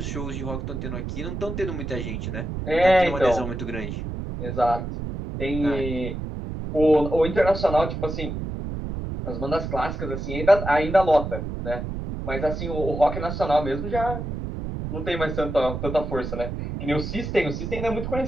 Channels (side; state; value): right; noise; rumble, 5 dB below the sound